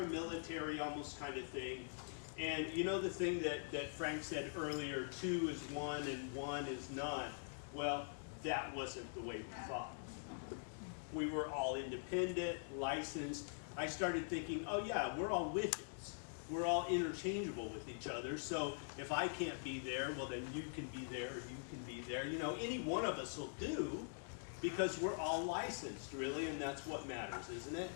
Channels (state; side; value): silent; right; digital silence